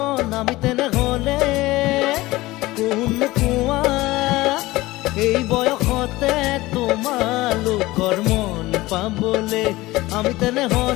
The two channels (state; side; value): quieter; right; 19.1 dB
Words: আমি তেনেহ'লে কোন কোৱা এই বয়সতে তোমালোকৰ মন পাবলে। আমি